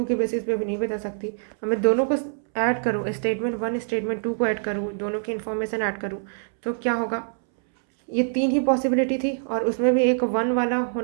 के बेसिस पे भी नहीं बता सकती। अब मैं दोनों को ऐड करूँ, स्टेटमेंट 1 स्टेटमेंट 2 को ऐड करूँ, दोनों की इन्फॉर्मेशन ऐड करूँ, तो क्या होगा? ये 3 ही पॉसिबिलिटी थी और उसमें भी एक 1 वाला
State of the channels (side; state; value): left; silent; 62 dB below the other